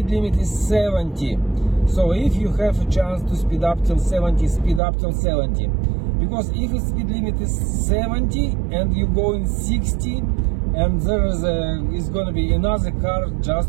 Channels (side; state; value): left; drops out; at 4.8 s